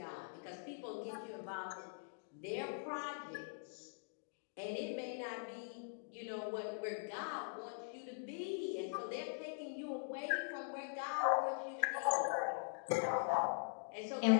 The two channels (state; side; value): silent; right; digital silence